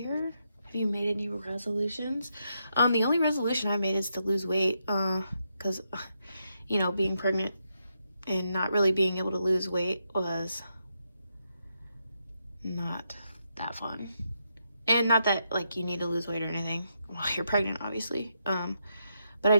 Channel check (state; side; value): inverted; both; correlation -0.81